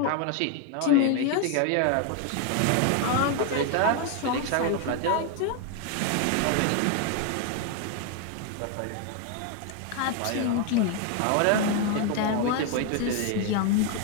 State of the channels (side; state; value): both; different; correlation 0.01